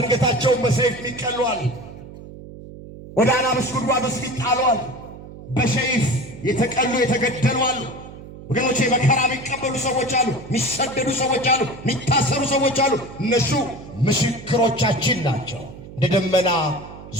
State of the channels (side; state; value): right; noise; hum, 15 dB below the sound